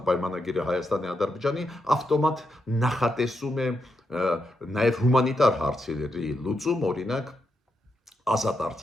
պայմանագիրը Հայաստանի Ադրբեջանի, ավտոմատ նախատեսում է նաև հումանիտար հարցերի լուծում, օրինակ ազատ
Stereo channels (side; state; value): both; normal; correlation 0.83